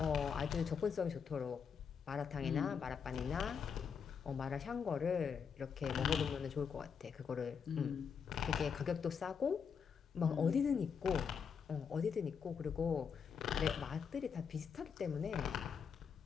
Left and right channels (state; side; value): quieter; right; 6.6 dB